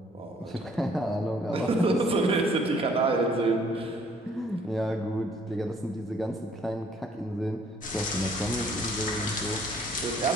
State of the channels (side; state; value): both; normal; correlation 0.61